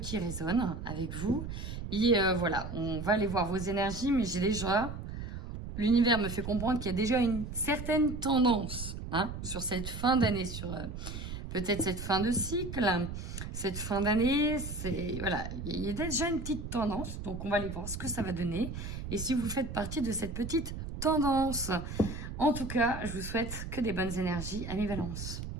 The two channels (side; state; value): right; noise; rumble, 7 dB below the sound